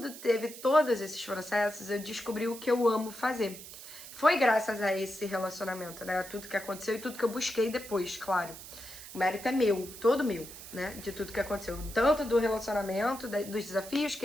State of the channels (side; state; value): right; noise; hiss, 14 dB below the sound